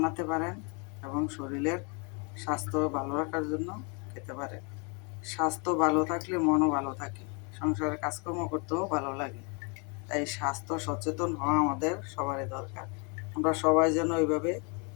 পারেন এবং শরীরের স্বাস্থ্য ভালো রাখার জন্য খেতে পারেন। স্বাস্থ্য ভালো থাকলে মনও ভালো থাকে, সংসারের কাজকর্ম করতেও ভালো লাগে। তাই স্বাস্থ্য সচেতন হওয়া আমাদের সবারই দরকার। আমরা সবাই যেন এইভাবে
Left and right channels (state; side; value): quieter; right; 34.3 dB